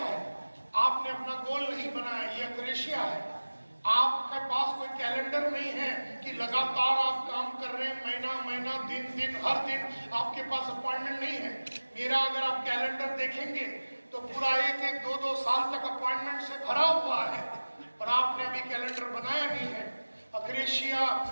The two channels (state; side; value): inverted; both; correlation -1.00